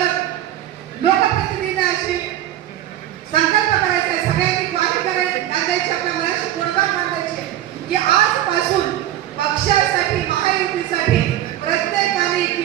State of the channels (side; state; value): left; quieter; 12.7 dB